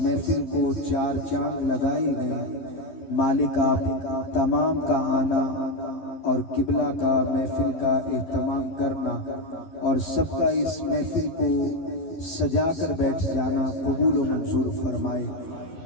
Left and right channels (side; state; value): right; late; 12 ms